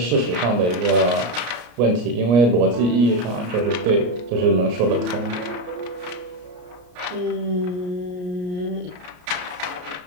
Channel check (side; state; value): left; late; 33 ms